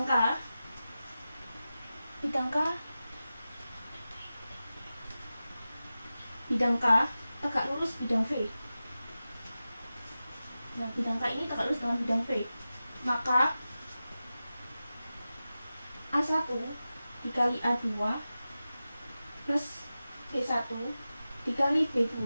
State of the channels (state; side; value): inverted; both; correlation -0.94